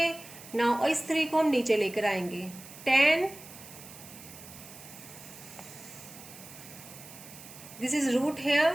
now इस 3 को हम नीचे लेकर आएंगे। tan, दिस इज रूट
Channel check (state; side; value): noise; right; hiss, 16 dB below the sound